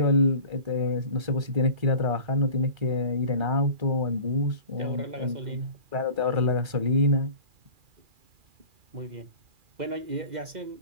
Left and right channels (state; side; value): late; left; 2.4 ms